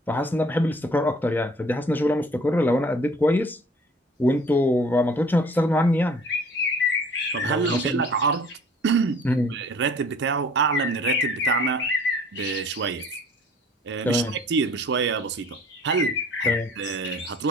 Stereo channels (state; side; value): normal; both; correlation 0.51